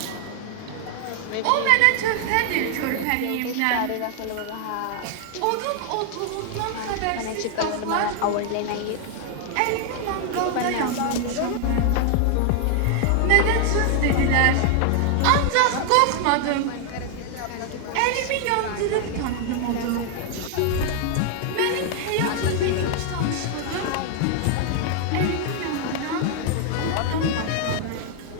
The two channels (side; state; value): both; different; correlation 0.00